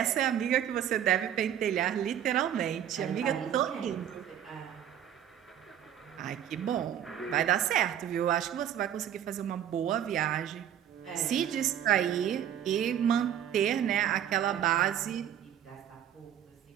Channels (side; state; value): left; quieter; 10.2 dB